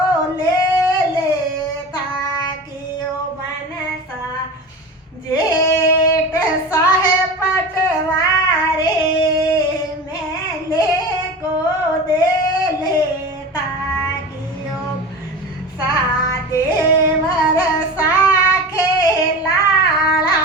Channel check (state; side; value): normal; both; correlation 0.31